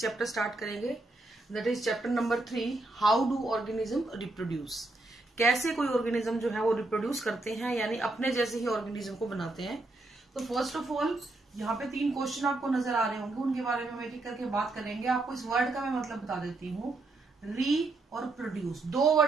चैप्टर स्टार्ट करेंगे। That is chapter number 3, how do organism reproduce. कैसे कोई ऑर्गेनिज्म जो है वो रिप्रोड्यूस करते हैं, यानी अपने जैसे ही ऑर्गेनिज्म को बनाते हैं। तो फर्स्ट ऑफ ऑल यहाँ पे 3 क्वेश्चन आपको नजर आ रहे होंगे, उनके बारे में हम एक एक करके बात करेंगे। आपको इस वर्ड का मैं मतलब बता देती हूँ। री और प्रोड्यूस, 2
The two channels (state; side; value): quieter; left; 3.1 dB